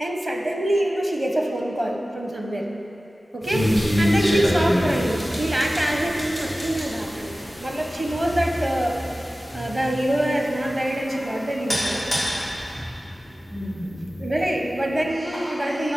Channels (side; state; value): both; normal; correlation 0.96